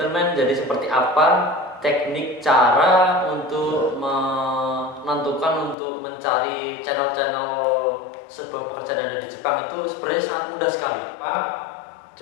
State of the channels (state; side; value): drops out; right; at 5.8 s